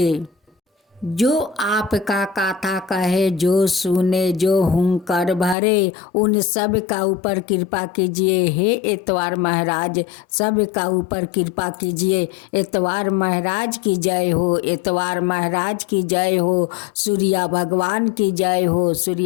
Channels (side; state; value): right; drops out; at 5.6 s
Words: जो आपका कथा कहे, जो सुने, जो हुंकार भरे, उन सब का ऊपर कृपा कीजिए। हे इतवार महाराज, सब का ऊपर कृपा कीजिए। इतवार महाराज की जय हो, इतवार महाराज की जय हो, सूर्या भगवान की जय हो,